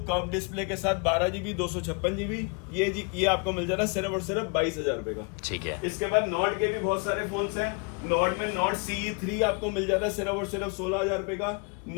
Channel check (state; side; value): quieter; right; 34.0 dB